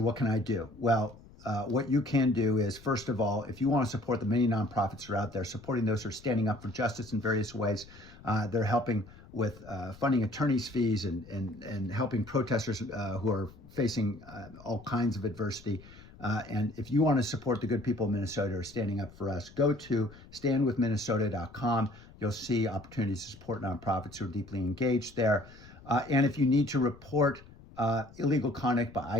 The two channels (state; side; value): noise; left; rumble, 21 dB below the sound